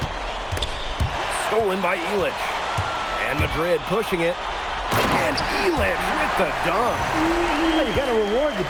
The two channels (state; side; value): identical; both; correlation 1.00